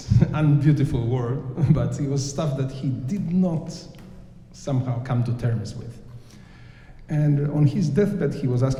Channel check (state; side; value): identical; both; correlation 1.00